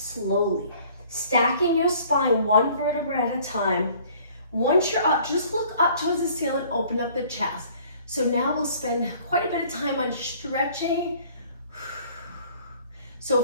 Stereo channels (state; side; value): inverted; both; correlation -0.55